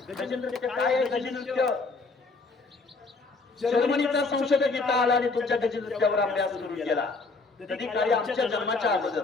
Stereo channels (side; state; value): right; quieter; 3.8 dB